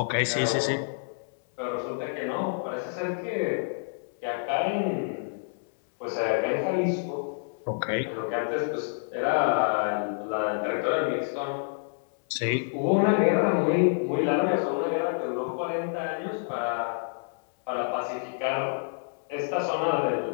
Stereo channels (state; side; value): silent; right; 59 dB below the other